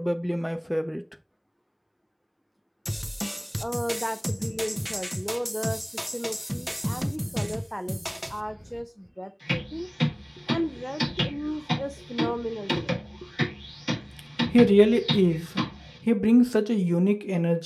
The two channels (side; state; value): both; identical; correlation 1.00